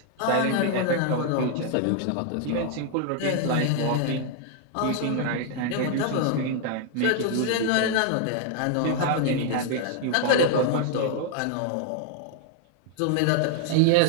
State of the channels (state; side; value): different; both; correlation 0.00